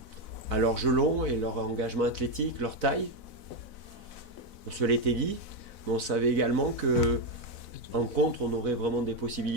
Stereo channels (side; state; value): right; late; 4.0 ms